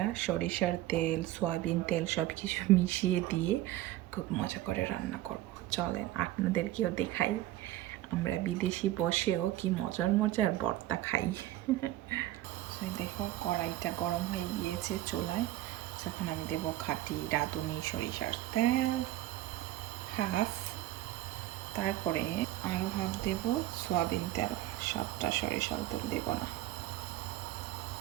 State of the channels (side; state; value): left; quieter; 15.1 dB